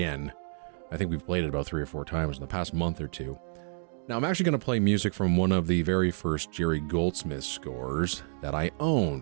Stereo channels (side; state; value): left; silent; 58 dB below the other